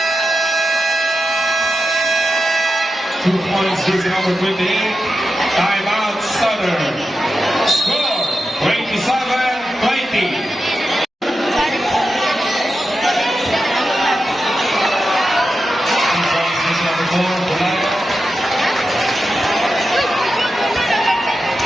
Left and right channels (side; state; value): both; normal; correlation 0.90